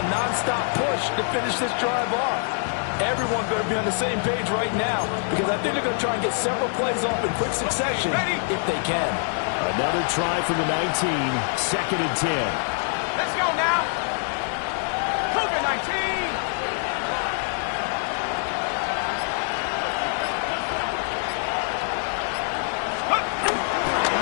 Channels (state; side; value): silent; right; 56 dB below the other